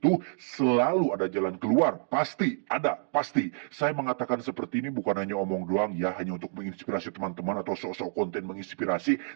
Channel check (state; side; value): silent; left; digital silence